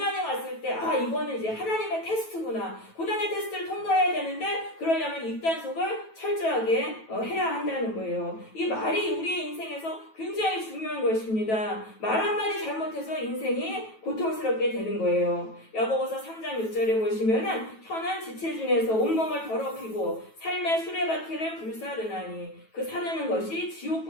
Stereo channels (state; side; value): late; right; 9.2 ms